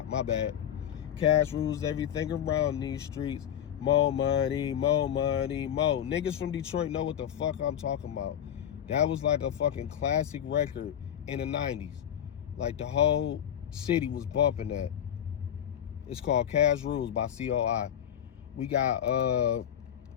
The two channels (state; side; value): quieter; right; 9.8 dB